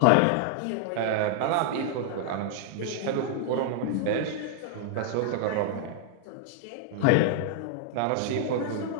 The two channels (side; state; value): both; different; correlation 0.00